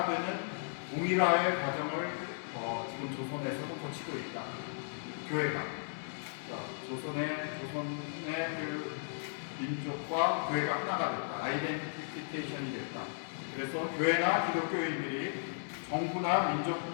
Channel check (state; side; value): silent; right; 54 dB below the other